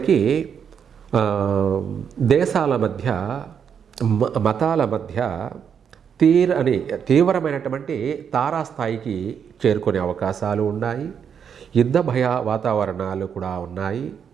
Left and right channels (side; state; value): left; quieter; 7.5 dB